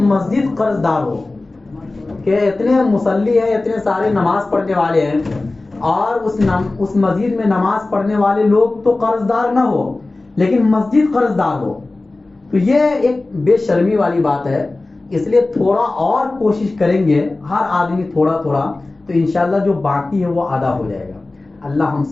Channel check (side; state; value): right; quieter; 3.1 dB